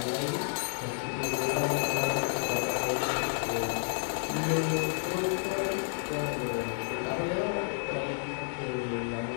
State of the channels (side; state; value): right; silent; digital silence